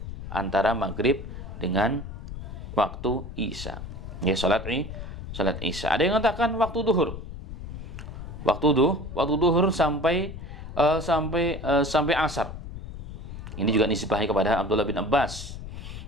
antara maghrib dengan waktu isya. Ya, salat isya. Ada yang mengatakan waktu duhur. Waktu duhur sampai asar. Ini juga nisbahi kepada Abdullah bin Abbas.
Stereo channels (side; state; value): left; noise; rumble, 10 dB below the sound